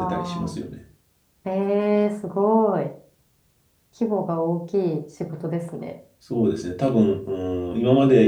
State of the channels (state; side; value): identical; both; correlation 1.00